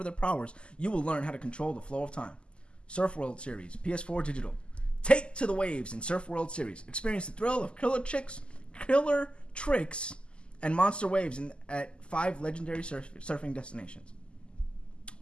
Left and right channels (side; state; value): right; late; 0.051 ms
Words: their powers, you will learn how to control the flow of time. Surf World Series, PS4 digital. Take to the waves in Surf World Series. Experience the thrill of killer tricks, and monster waves at 5 legendary surfing destinations.